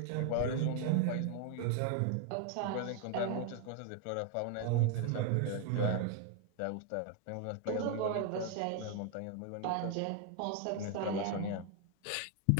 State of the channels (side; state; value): both; different; correlation 0.01